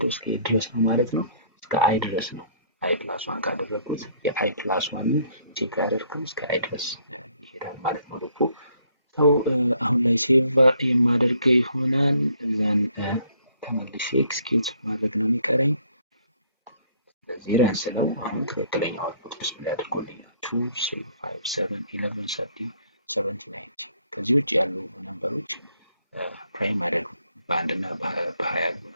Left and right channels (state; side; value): inverted; both; correlation -0.64